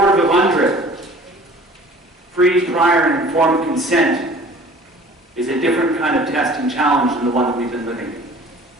of UNDRIP. Free, prior, and informed consent is a different kind of test and challenge than the one that we've been living.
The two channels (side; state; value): both; normal; correlation 0.48